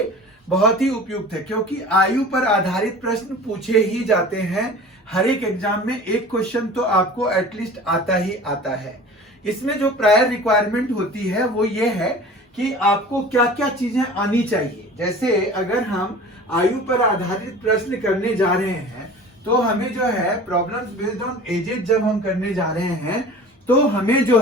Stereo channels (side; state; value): both; normal; correlation 0.41